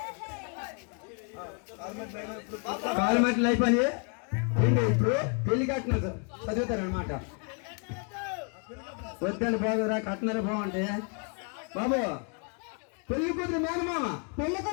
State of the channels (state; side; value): quieter; right; 39.1 dB